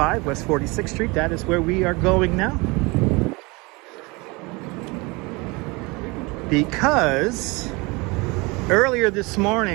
West 46th Street. That is where we are going now. Because earlier this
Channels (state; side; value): quieter; left; 25.9 dB